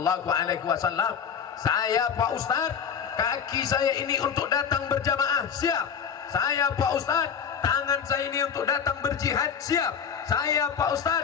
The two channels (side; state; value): right; quieter; 7.2 dB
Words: alaihi wasallam. Saya Pak Ustadz, kaki saya ini untuk datang berjamaah, siap. Saya Pak Ustadz, tangan saya ini untuk datang berjihad, siap. Saya Pak